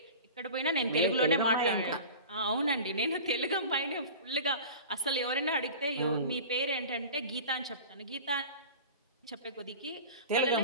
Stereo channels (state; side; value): inverted; both; correlation -0.36